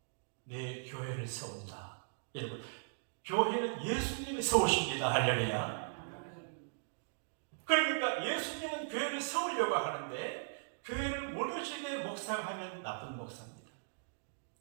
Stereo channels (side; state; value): left; silent; digital silence